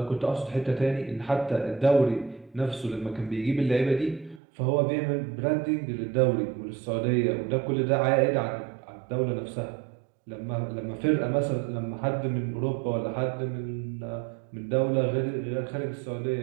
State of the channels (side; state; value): left; drops out; at 4.4 s